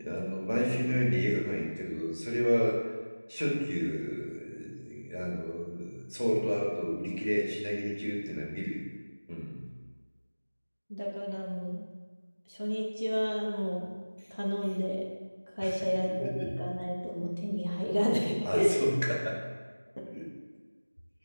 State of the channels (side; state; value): both; inverted; correlation -1.00